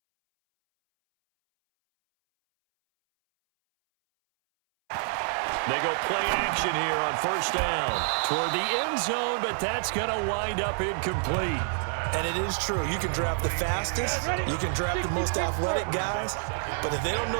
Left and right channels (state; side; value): silent; left; 60 dB below the other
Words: They go play action here on first down toward the end zone, but that's going to wind up incomplete. And it is true. You can draft the fastest, you can draft the most athletic guys, but if they don't